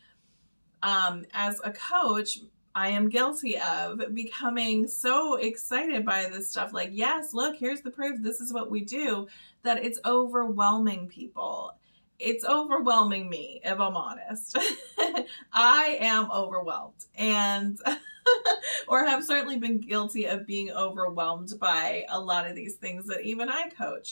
as a coach, I am guilty of becoming so excited by this stuff. Like, yes, look, here's the proof. This is what we do, that it's overwhelming people. It's overwhelming me, if I'm honest. I am overwhelmed, and or have certainly been guilty of being overwhelmed by a lot of these things that even I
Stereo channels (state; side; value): inverted; both; correlation -1.00